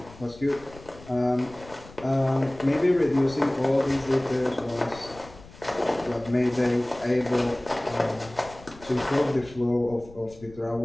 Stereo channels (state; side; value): noise; left; rumble, 20 dB below the sound